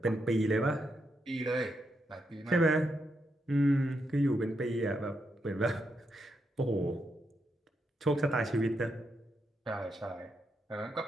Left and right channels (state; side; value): normal; both; correlation 0.82